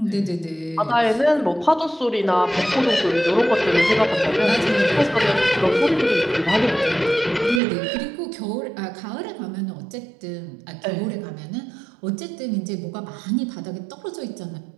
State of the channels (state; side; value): drops out; left; at 7.6 s